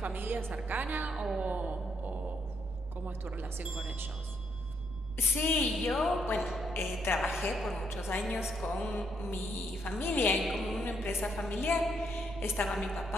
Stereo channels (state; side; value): noise; right; rumble, 13 dB below the sound